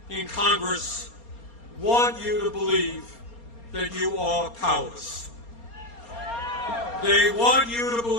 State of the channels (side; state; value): right; late; 4.3 ms